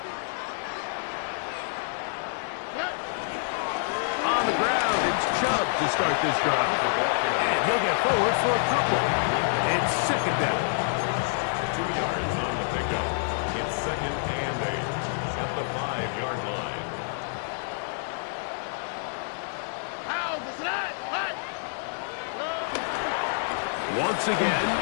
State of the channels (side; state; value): right; silent; digital silence